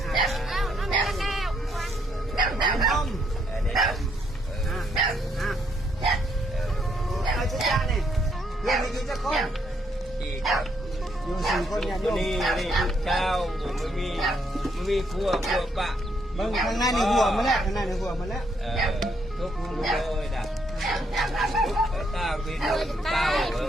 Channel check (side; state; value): both; normal; correlation 0.73